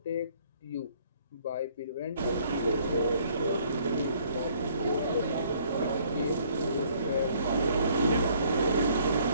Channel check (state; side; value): inverted; both; correlation -0.62